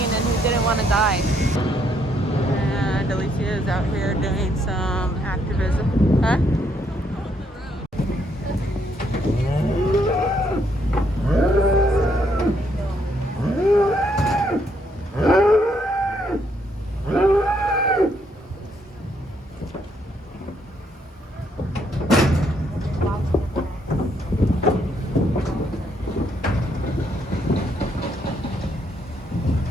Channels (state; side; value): normal; both; correlation 0.72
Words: and who didn't want to die. And Alicia is out here doing some activism. Huh?